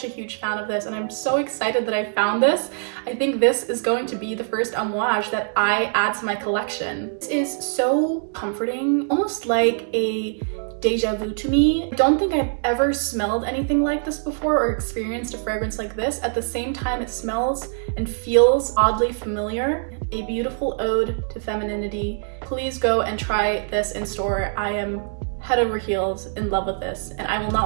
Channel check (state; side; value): silent; left; digital silence